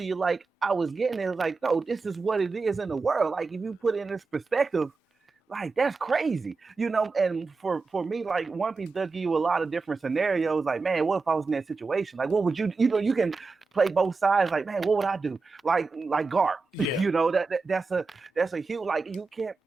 you like I was getting it. Like, no, this is what it is in the world. Like, if you put it in this perspective, like that's crazy, And for me, like One Piece does give you a lot of different scenarios. Like, man, what if I was in that situation? Like, what would you, you can play both sides. Like, man, what would I do? Like Garp, Yeah. that's a huge. Like, you can't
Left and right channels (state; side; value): quieter; left; 4.2 dB